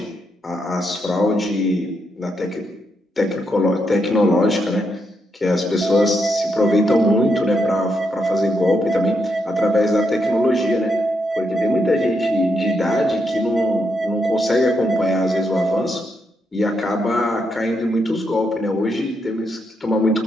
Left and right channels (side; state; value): both; normal; correlation 0.80